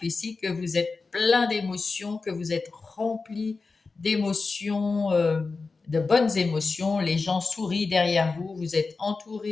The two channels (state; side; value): quieter; right; 4.1 dB